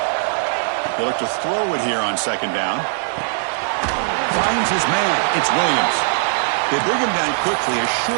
They look to throw it here on second down. Finds his man. It's Williams. They bring him down quickly, a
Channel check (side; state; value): left; silent; 66 dB below the other